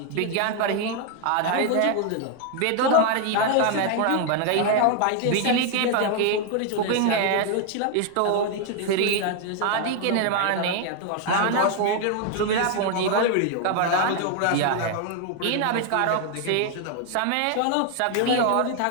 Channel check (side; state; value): both; different; correlation 0.01